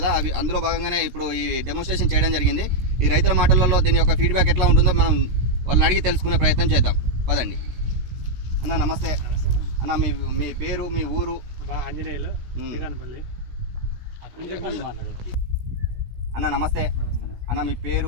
అవి అందులో భాగంగానే ఇప్పుడు ఈ డెమోన్స్ట్రేషన్ చేయడం జరిగింది. ఈ రైతుల మాటలలో దీని యొక్క ఫీడ్బ్యాక్ ఎట్లా ఉంటుందో మనం వాళ్ళని అడిగి తెలుసుకునే ప్రయత్నం చేద్దాం. పదండి. అన్న నమస్తే. అన్న మీ పేరు, మీ ఊరు? ఆంజనేయులు, శ్రీకానపల్లి. అన్న నమస్తే. అన్న మీ పేరు,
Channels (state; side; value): late; left; 17 ms